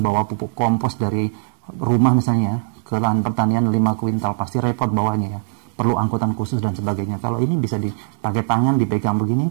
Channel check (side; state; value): left; silent; digital silence